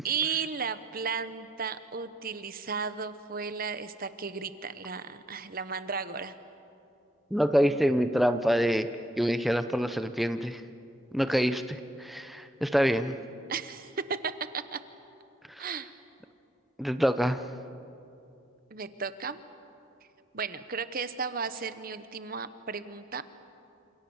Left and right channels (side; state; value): both; normal; correlation 0.70